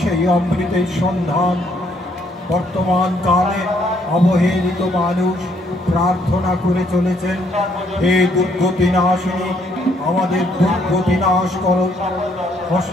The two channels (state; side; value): normal; both; correlation 0.68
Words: অমৃতের সন্ধান। বর্তমান কালে অবহেলিত মানুষ প্রার্থনা করে চলেছেন, হে দুর্গতি নাশিনী, আমাদের দুর্গতি নাশ করো।